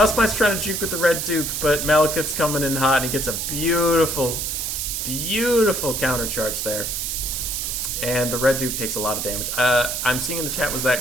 trying to juke with the Red Duke, but Malekith's coming in hot, and he gets a beautiful, beautiful countercharge there. And the Red Duke takes a lot of damage. I'm seeing in the chat, was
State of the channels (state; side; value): noise; right; hiss, 2 dB below the sound